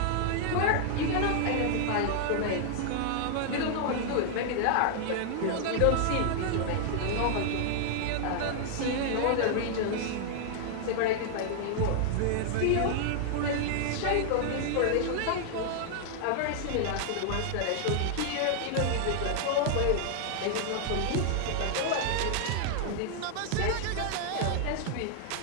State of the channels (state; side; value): different; both; correlation -0.01